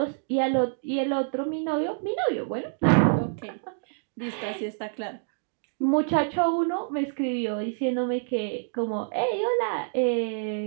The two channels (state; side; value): silent; left; digital silence